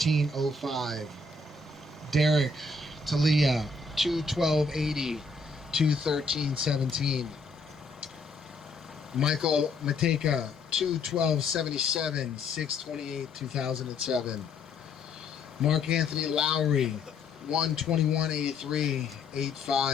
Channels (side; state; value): right; quieter; 3.7 dB